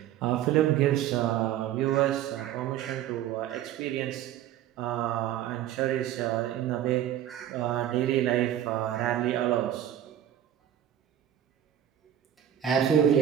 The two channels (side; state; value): left; quieter; 11.1 dB